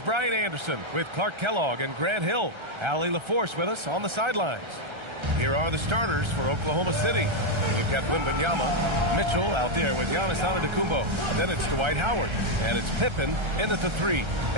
Brian Anderson with Clark Kellogg and Grant Hill. Allie LaForce with us on the sidelines. Here are the starters for Oklahoma City. We've got Wembanyama, Mitchell out there with Giannis Antetokounmpo. Then it's Dwight Howard, and it's Pippen in at the 3.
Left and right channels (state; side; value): late; left; 1.3 ms